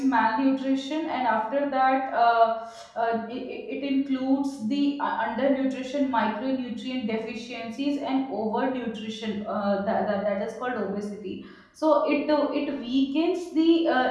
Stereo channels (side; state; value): both; identical; correlation 1.00